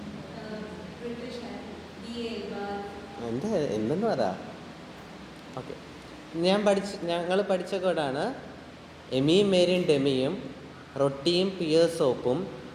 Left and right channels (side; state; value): both; identical; correlation 1.00